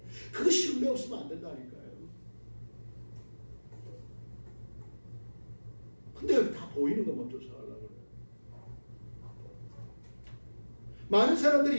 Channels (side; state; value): both; inverted; correlation -1.00